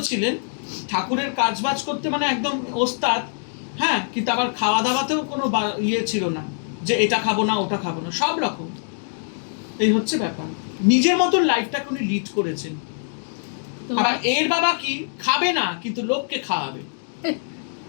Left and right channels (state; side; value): silent; right; 63 dB below the other